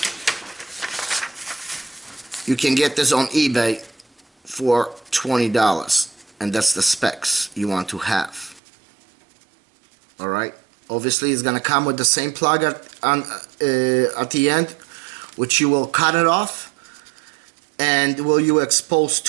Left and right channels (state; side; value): drops out; left; at 8.6 s